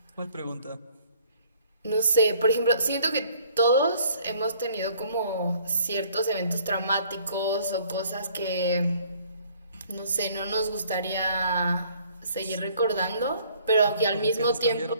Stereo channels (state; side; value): inverted; both; correlation -0.59